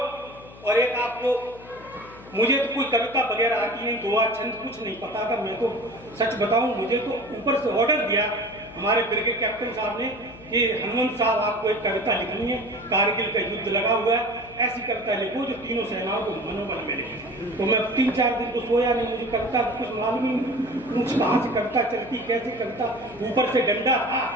और एक आपको, मुझे तो कोई कविता वगैरह आती नहीं, दुआ छंद कुछ नहीं पता था। मैं तो सच बताऊं, मुझे तो ऊपर से ऑर्डर दिया हमारे ब्रिगेड कैप्टन साहब ने कि हनुमंत साहब आपको एक कविता लिखनी है, कारगिल का युद्ध लगा हुआ है, ऐसी कविता लिखो जो तीनों सेनाओं को मनोबल मिले। तो मैं 3-4 दिन तो सोया नहीं, मुझे कविता कुछ मालूम ही नहीं, कुछ कहाँ से कविता चलती, कैसे कविता, ऊपर से डंडा था,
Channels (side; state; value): left; noise; hum, 20 dB below the sound